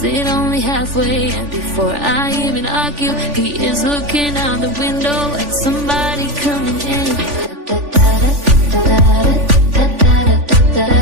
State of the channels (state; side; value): late; left; 3.4 ms